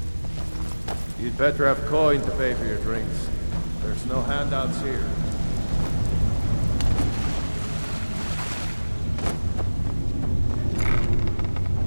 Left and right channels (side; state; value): both; inverted; correlation -1.00